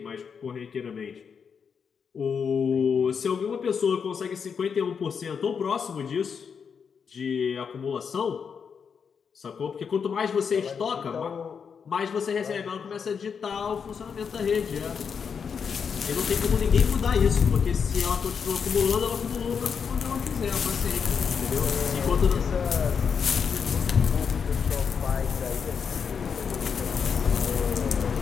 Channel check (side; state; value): right; quieter; 6.5 dB